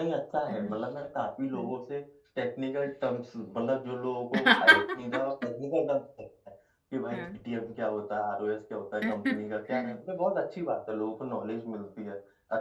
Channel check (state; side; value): identical; both; correlation 1.00